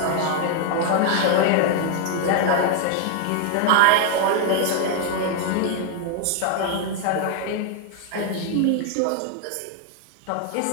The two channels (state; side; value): different; both; correlation 0.00